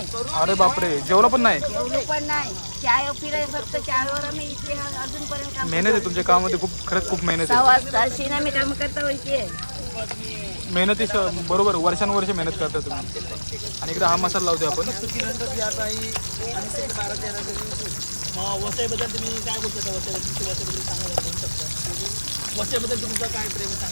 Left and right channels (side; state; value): both; inverted; correlation -1.00